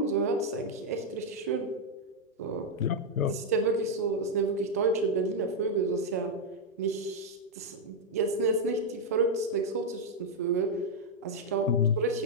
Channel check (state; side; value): normal; both; correlation -0.01